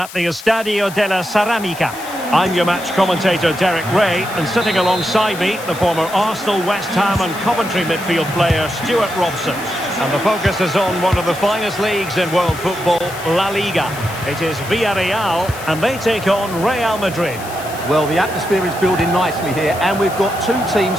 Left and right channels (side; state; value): left; noise; hiss, 15 dB below the sound